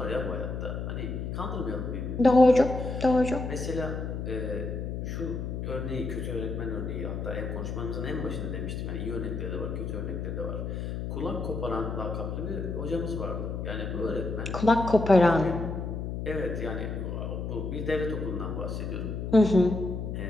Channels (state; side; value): noise; left; hum, 4 dB below the sound